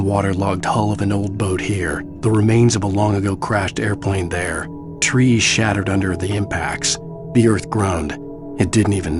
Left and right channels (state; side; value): identical; both; correlation 1.00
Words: waterlogged hull of an old boat here, the remains of a long-ago crashed airplane there, trees shattered under the impacts. The earth groaned. It didn't even